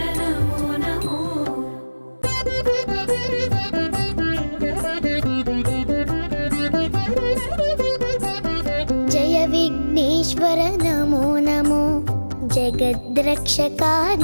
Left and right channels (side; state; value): both; inverted; correlation -1.00